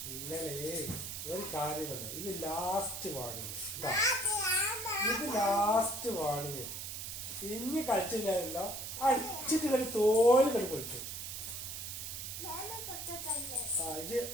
ഇന്നലെ ഒരു കാര്യമല്ല. ഇത് ലാസ്റ്റ് വാണിങ്. ഇത് ലാസ്റ്റ് വാണിങ്. ഇനി കളിച്ചില്ലല്ലോ. അടിച്ചിട്ട് കളി തോല് കളി പൊളിച്ചു. ഇത്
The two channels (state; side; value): noise; right; hiss, 6 dB below the sound